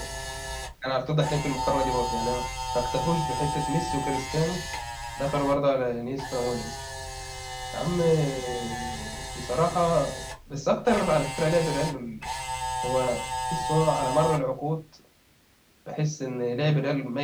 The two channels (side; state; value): both; identical; correlation 1.00